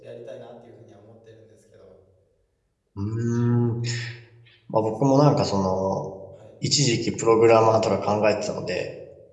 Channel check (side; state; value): both; identical; correlation 1.00